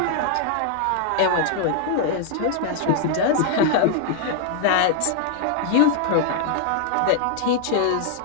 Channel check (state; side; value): different; both; correlation -0.01